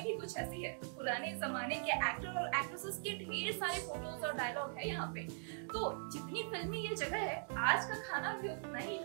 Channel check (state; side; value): silent; left; digital silence